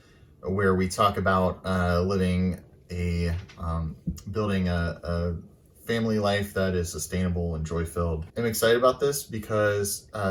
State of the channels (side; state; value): both; identical; correlation 1.00